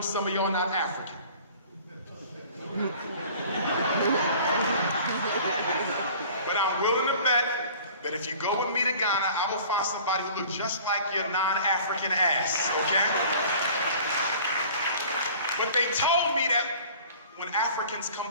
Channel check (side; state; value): both; inverted; correlation -0.46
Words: some of y'all not African. But I'm willing to bet that if you go with me to Ghana, I will find somebody who looks just like your non-African ass, okay? But they told me that when Africans come